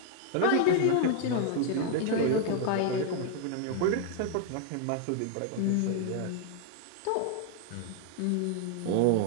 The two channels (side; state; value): both; different; correlation 0.00